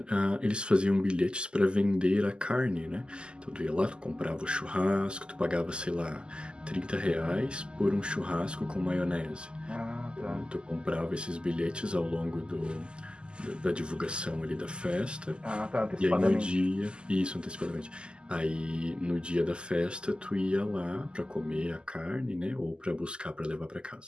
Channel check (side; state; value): left; late; 0.049 ms